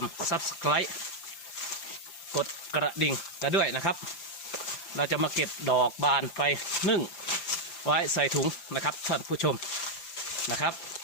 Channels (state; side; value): late; right; 5.9 ms